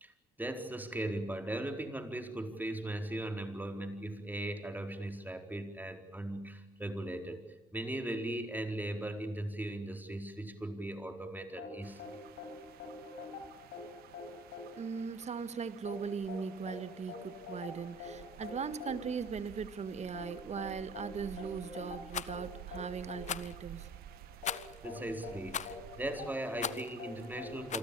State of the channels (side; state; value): both; normal; correlation 0.60